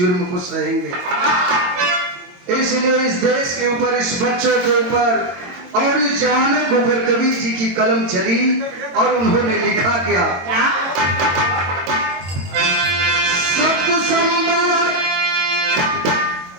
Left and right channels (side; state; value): left; late; 22 ms